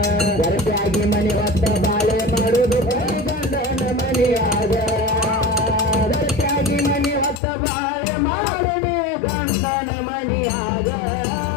ಗರ್ಭಾಗಿ ಮನೆ ಹೊತ್ತ ಬಾಳೆ ಮಾಡುವುದು ಗಂಡನ ಮನೆಯಾಗ ಗರ್ಭಾಗಿ ಮನೆ ಹೊತ್ತ ಬಾಳೆ ಮಾಡದೆ ಗಂಡನ ಮನೆಯಾಗ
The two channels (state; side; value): drops out; right; at 7.4 s